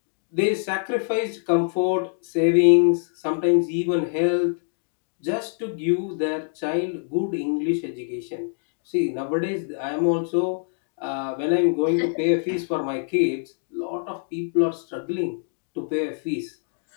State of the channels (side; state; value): right; silent; digital silence